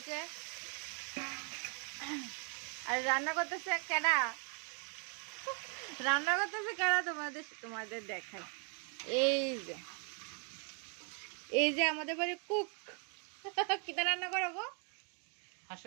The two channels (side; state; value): left; quieter; 39.2 dB